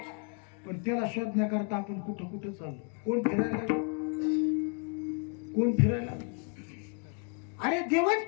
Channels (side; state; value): right; quieter; 37.8 dB